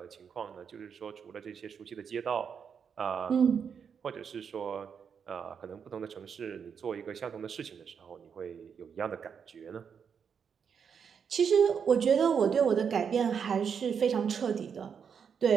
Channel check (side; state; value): left; quieter; 6.9 dB